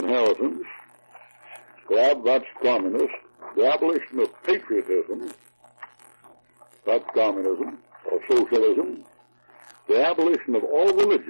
That's communist. The abolition of patriotism. That's communism or socialism. The abolition of all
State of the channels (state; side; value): inverted; both; correlation -1.00